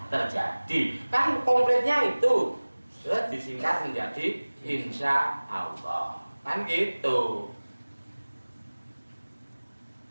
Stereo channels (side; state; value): both; inverted; correlation -1.00